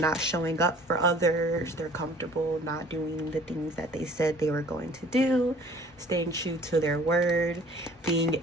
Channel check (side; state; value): both; normal; correlation 0.52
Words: showing up for others. They're comfortable not doing the things that they said they were going to do. Staying true to their word. Being